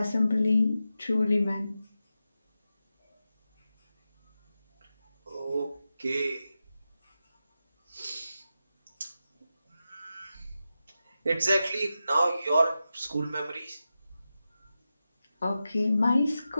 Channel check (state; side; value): inverted; both; correlation -0.91